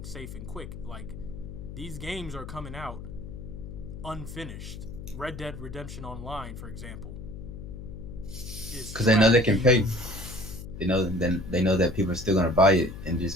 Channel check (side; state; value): left; noise; hum, 10 dB below the sound